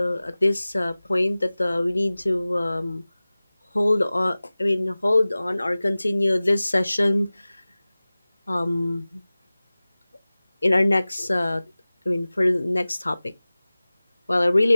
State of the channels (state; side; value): inverted; both; correlation -0.98